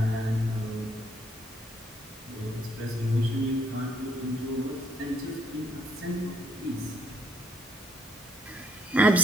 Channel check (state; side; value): normal; both; correlation 0.68